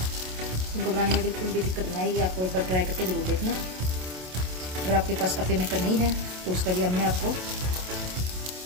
इनको बनाने में बिल्कुल भी दिक्कत नहीं आएगी। आपको एक बार ट्राई करके ज़रूर देखना। अगर आपके पास अप्पे मेकर नहीं है तो उसका भी हमने आपको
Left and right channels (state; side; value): late; left; 27 ms